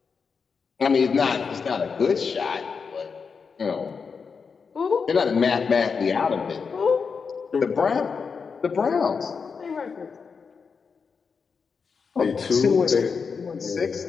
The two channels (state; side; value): quieter; right; 5.5 dB